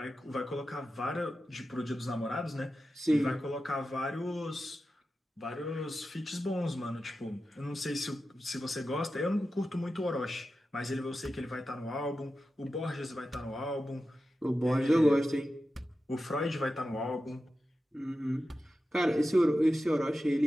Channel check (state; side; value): normal; both; correlation 0.92